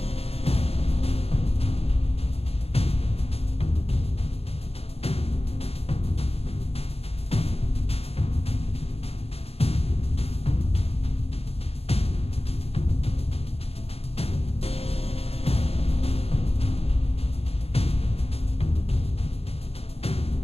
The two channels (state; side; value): late; right; 0.29 ms